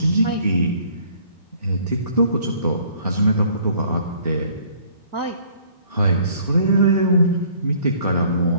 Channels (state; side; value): inverted; both; correlation -0.58